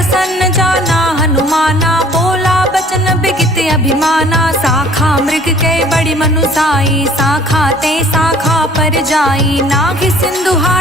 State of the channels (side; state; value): both; normal; correlation 0.53